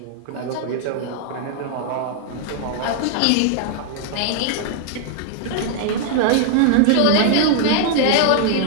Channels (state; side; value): different; both; correlation 0.00